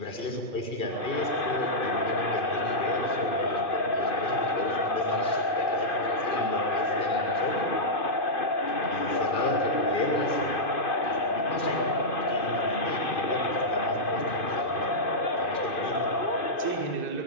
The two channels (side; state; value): right; late; 2.5 ms